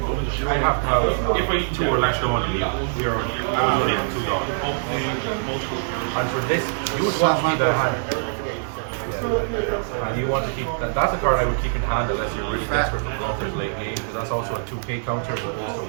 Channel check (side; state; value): left; silent; digital silence